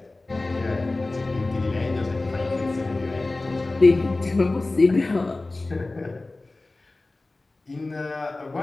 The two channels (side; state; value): right; quieter; 3.1 dB